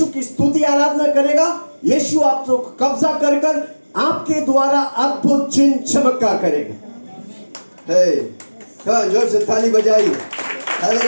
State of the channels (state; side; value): inverted; both; correlation -1.00